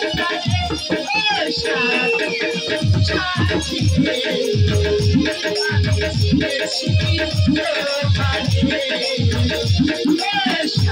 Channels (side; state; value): both; identical; correlation 1.00